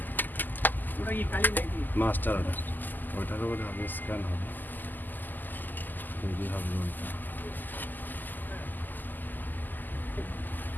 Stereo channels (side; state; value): right; late; 0.087 ms